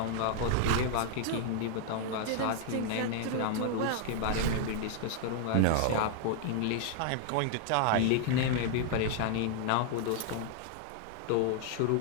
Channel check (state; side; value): different; both; correlation 0.00